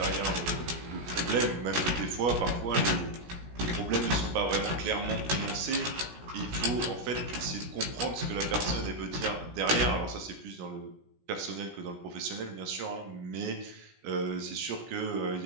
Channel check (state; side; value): late; left; 17 ms